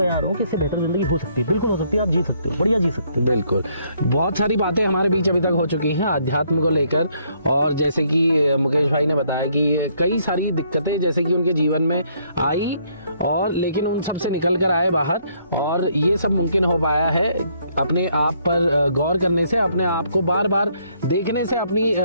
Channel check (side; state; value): both; inverted; correlation -0.69